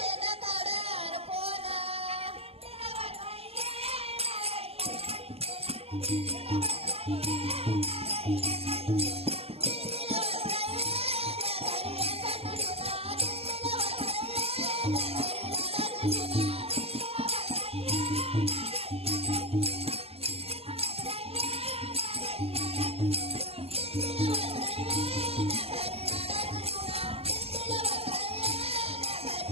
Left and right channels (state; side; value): late; left; 0.29 ms